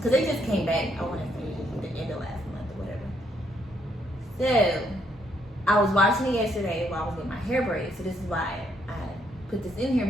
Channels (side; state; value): both; normal; correlation 0.73